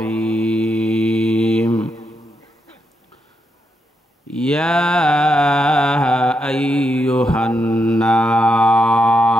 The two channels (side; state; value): both; normal; correlation 0.83